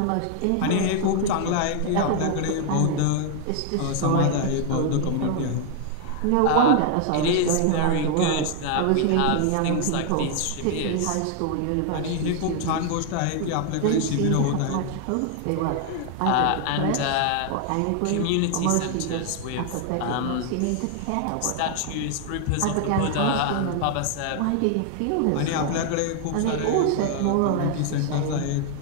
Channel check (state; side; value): different; both; correlation 0.00